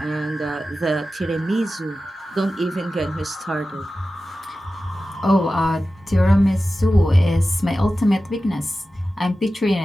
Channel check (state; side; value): normal; both; correlation 0.94